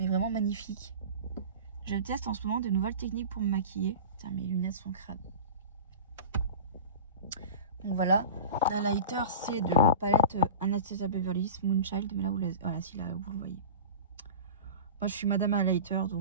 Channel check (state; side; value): inverted; both; correlation -0.33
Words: vraiment magnifique. Je teste en ce moment de nouvelles techniques pour me maquiller. Putain, mes lunettes sont crades. Donc voilà. L'highlighter, c'est de la palette Anastasia Beverly Hills Moonchild. Mais là, voilà, si là, vous le voyez. Moi, je suis Madame Highlighter,